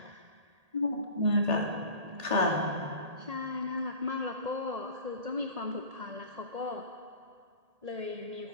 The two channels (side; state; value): left; late; 1.8 ms